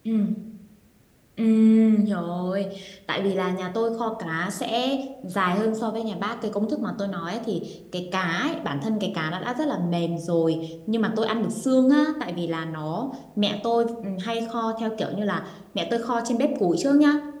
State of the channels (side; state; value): both; identical; correlation 1.00